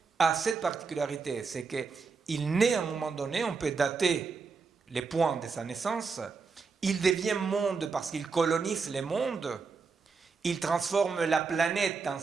a cette particularité, c'est qu'il naît à un moment donné, on peut dater les points de sa naissance, il devient monde parce qu'il colonise les mondes, il transforme la planète dans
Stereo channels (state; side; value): quieter; left; 4.9 dB